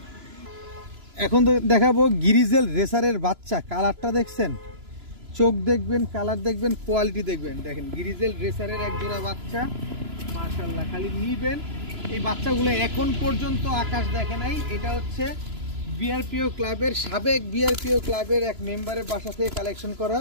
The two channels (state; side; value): late; left; 3.0 ms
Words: এখন তো দেখাবো গ্রিজেল রেসারের বাচ্চা। কালারটা দেখছেন, চোখ দেখবেন, কালার দেখবেন, কোয়ালিটি দেখবেন। দেখেন গ্রিজেল রেসারের এক জোড়া বাচ্চা, মাশাআল্লাহ। খালি নিবেন। এই বাচ্চাগুলো এখন পর্যন্ত আকাশ দেখে নাই। এটা হচ্ছে বিআরপিও ক্লাবের, সাবেক বিআরপিও ক্লাবের এক মেম্বারের বাসা থেকে কালেকশন করা